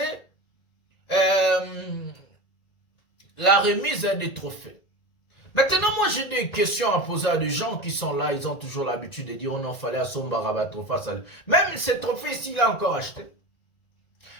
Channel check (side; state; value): right; late; 1.9 ms